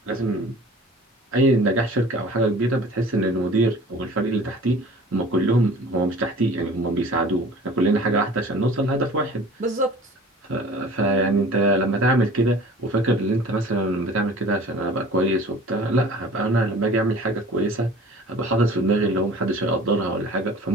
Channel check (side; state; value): both; normal; correlation 0.45